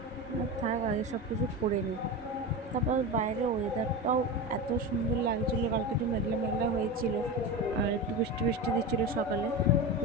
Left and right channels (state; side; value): normal; both; correlation 0.23